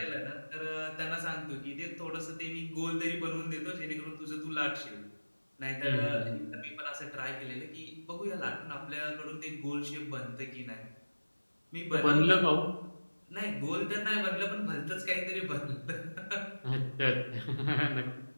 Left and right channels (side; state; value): both; inverted; correlation -1.00